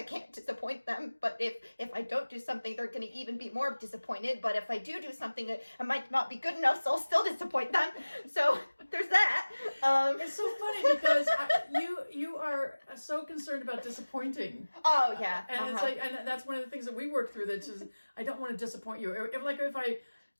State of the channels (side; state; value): both; inverted; correlation -1.00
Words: can't disappoint them. But if I don't do something, they're going to even be more disappointed. But if I do something, I might not be good enough, so I'll still disappoint them. So there's that. It's so funny because you are so concerned about disappointing. Oh yeah. And it's like, and that's one of the things that we work through, that just, I don't want to disappoint you.